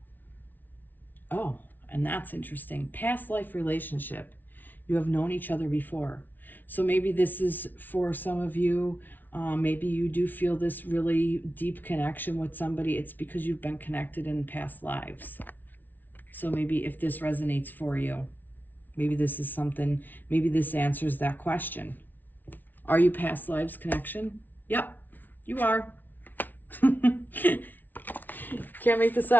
Oh, and that's interesting. Past life relationship. You have known each other before. So maybe this is for some of you. Maybe you do feel this really deep connection with somebody. It's because you've been connected in past lives. So maybe if this resonates for you, maybe this is something, maybe this answers that question. Are you past lives connection? Yep, you are. Can't make this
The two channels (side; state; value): right; late; 0.085 ms